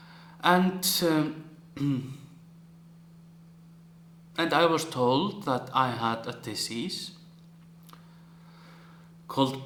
And I was told that I had a disease called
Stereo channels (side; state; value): both; identical; correlation 1.00